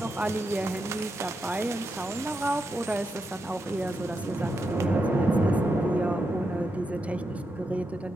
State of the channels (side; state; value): both; normal; correlation 0.85